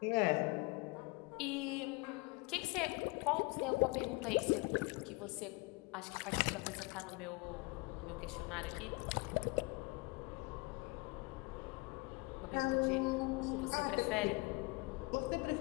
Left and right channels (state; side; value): quieter; right; 26.8 dB